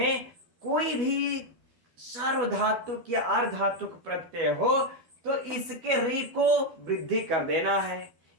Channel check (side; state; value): left; late; 12 ms